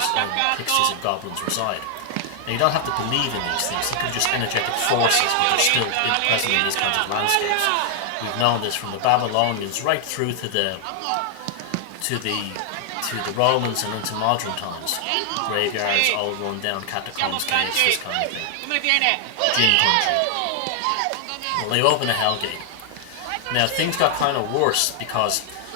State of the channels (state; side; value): different; both; correlation 0.00